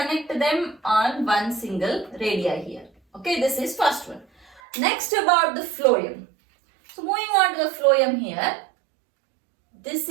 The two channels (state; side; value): drops out; left; at 4.6 s